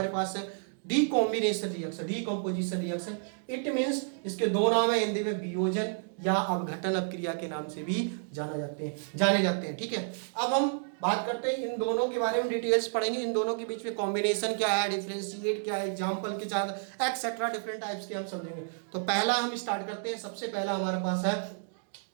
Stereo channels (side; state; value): left; silent; digital silence